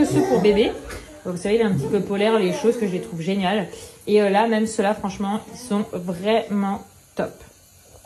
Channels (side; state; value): both; identical; correlation 1.00